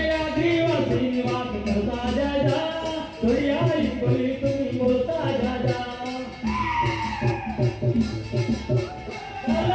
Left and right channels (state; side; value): identical; both; correlation 1.00